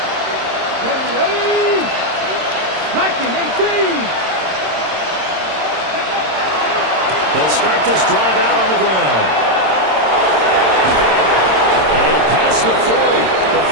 Ready! Hacking 18! They'll start this drive out on the ground. And past the 40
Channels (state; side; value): late; left; 26 ms